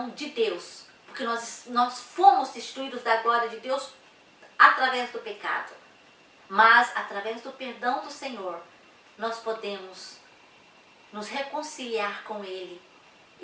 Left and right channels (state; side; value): identical; both; correlation 1.00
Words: de Deus, porque nós fomos destituídos da glória de Deus através do pecado. Mas através do perdão do Senhor, nós podemos nos reconciliar com Ele